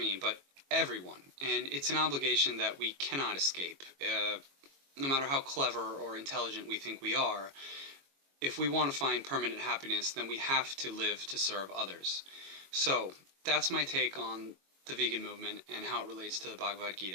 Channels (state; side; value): late; left; 22 ms